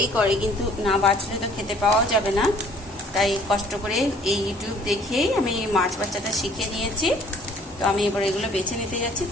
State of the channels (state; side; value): normal; both; correlation 0.56